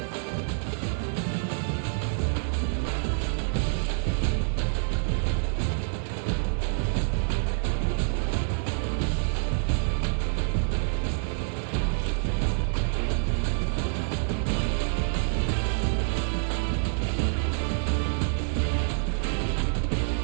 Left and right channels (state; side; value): silent; left; digital silence